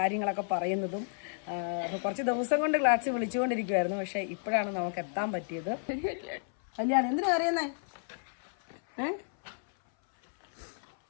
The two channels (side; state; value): right; silent; 57 dB below the other